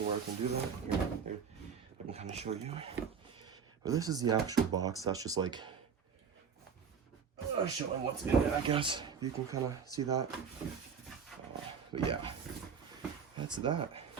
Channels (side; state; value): left; quieter; 6.7 dB